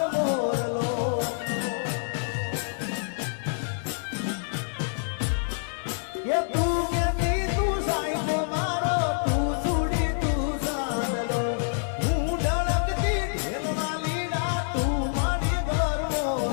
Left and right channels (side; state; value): right; silent; digital silence